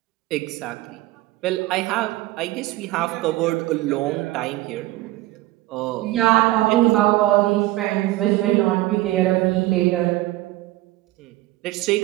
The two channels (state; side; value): quieter; left; 17.3 dB